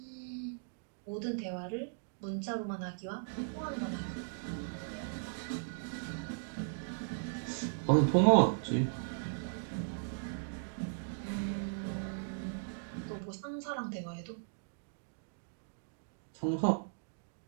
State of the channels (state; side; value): silent; left; digital silence